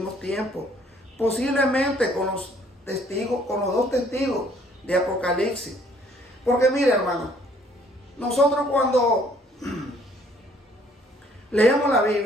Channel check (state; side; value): normal; both; correlation 0.62